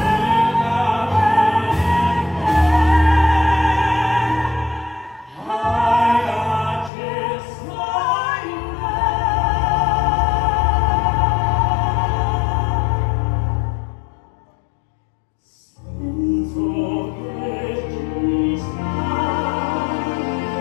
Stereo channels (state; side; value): drops out; right; at 6.9 s